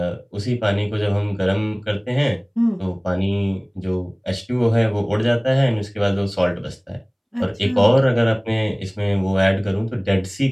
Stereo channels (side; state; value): both; identical; correlation 1.00